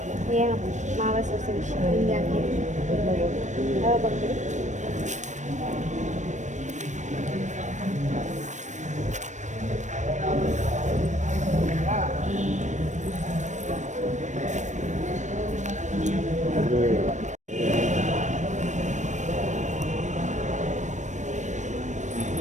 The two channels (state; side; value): late; left; 0.35 ms